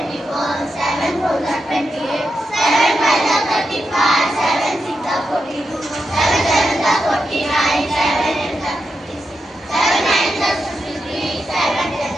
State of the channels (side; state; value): both; normal; correlation 0.87